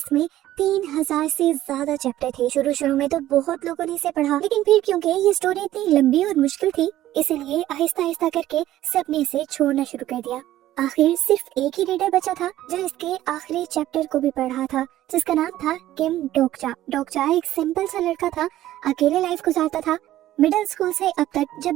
3000 से ज्यादा चैप्टर थे। शुरू में तो बहुत लोगों ने इसे पढ़ा, लेकिन फिर क्योंकि ये स्टोरी इतनी लंबी और मुश्किल थी, इसलिए आहिस्ता आहिस्ता करके सबने इसे छोड़ना शुरू कर दिया। आखिर सिर्फ एक ही रीडर बचा था जो इसके आखिरी चैप्टर को भी पढ़ा था, जिसका नाम था किम डोकचा। डोकचा एक सिंपल सा लड़का था, अकेले लाइफ गुजारता था। मिडिल स्कूल से अब तक जब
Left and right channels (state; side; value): quieter; left; 14.0 dB